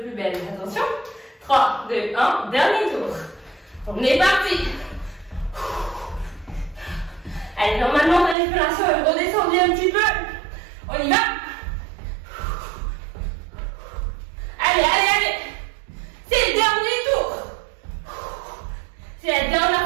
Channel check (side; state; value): left; drops out; at 8.3 s